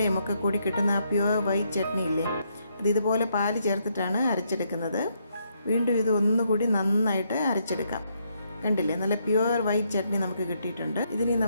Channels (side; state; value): both; inverted; correlation -0.75